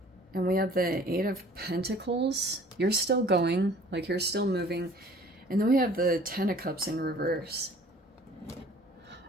And we have the Eight of Pentacles. You're still going, like you're still moving. And then we have the Ten of Cups in reverse.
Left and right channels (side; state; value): both; normal; correlation 0.51